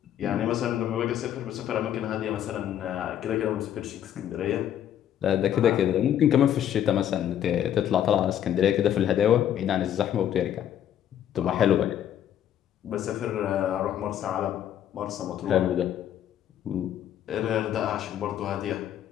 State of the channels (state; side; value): quieter; right; 10.4 dB